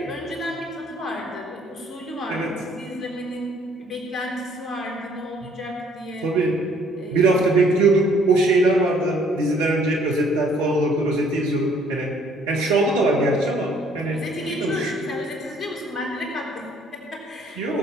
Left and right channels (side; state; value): both; normal; correlation 0.61